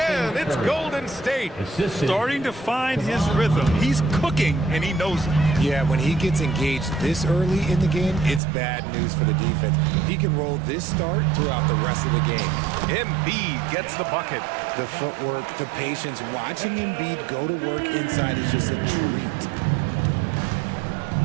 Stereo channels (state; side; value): drops out; left; at 8.4 s